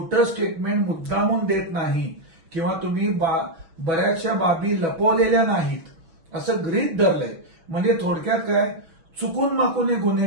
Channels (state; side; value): late; left; 6.1 ms